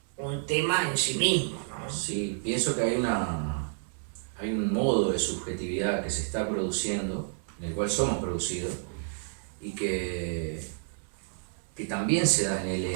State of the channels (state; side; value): silent; left; digital silence